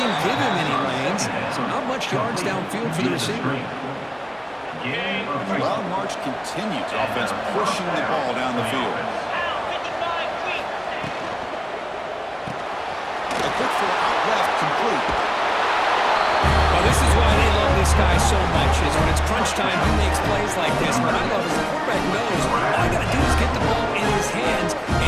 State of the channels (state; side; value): identical; both; correlation 1.00